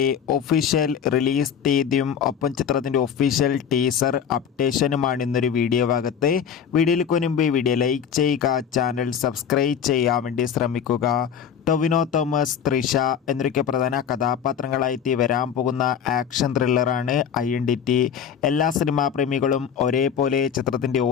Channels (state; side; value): quieter; right; 7.9 dB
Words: ഒഫീഷ്യൽ റിലീസ് തീയതിയും ഒപ്പം ചിത്രത്തിൻ്റെ ഒഫീഷ്യൽ ടീസർ അപ്ഡേഷനുമാണ് ഇന്നൊരു വീഡിയോ ഭാഗത്ത്. വീഡിയോയിലേക്ക് മുൻപ് വീഡിയോ ലൈക്ക് ചെയ്യുക, ചാനൽ സബ്സ്ക്രൈബ് ചെയ്യാൻ വേണ്ടി ശ്രമിക്കുക. ടൊവിനോ തോമസ്, തൃഷ എന്നൊക്കെ പ്രധാന കഥാപാത്രങ്ങളായി വരാൻ പോകുന്ന ആക്ഷൻ ത്രില്ലറാണ് INDT. എല്ലാ സിനിമാ പ്രേമികളും ഒരേപോലെ ചിത്രത്തിൻ്റെ